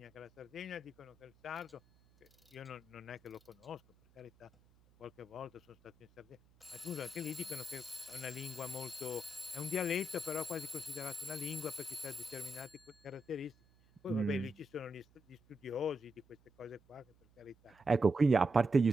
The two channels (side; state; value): right; noise; hum, 30 dB below the sound